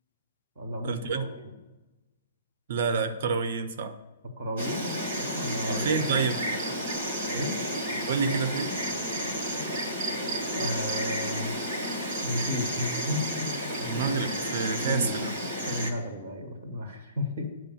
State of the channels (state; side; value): inverted; both; correlation -0.49